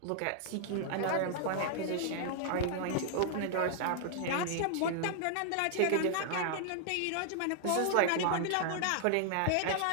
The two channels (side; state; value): both; different; correlation 0.00